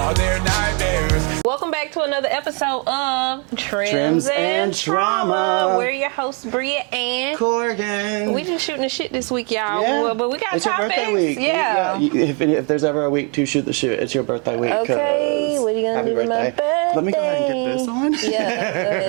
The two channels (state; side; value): quieter; left; 35.9 dB